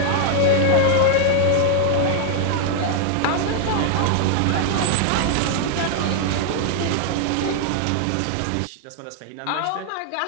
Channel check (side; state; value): both; different; correlation 0.00